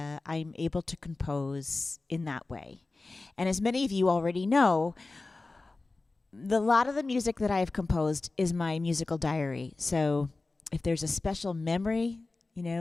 I'm able to compose in that way. And as many of you already know, a lot of the music that I have composed is my musical diary. So if there's a special memory,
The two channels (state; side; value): quieter; right; 3.4 dB